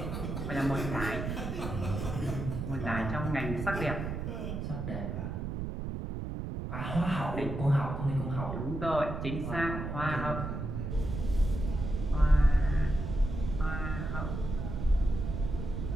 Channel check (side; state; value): right; noise; rumble, 4 dB below the sound